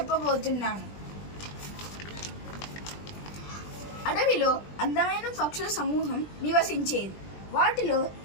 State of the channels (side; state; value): right; late; 20 ms